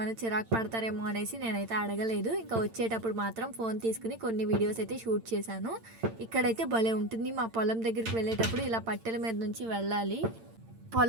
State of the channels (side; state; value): left; late; 8.8 ms